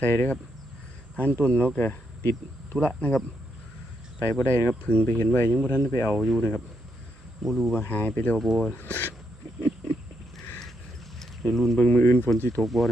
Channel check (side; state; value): both; normal; correlation 0.79